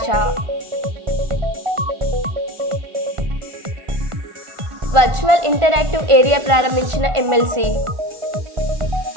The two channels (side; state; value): left; late; 1.4 ms